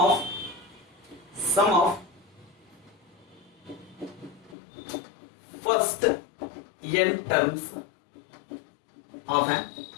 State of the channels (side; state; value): right; drops out; at 4.5 s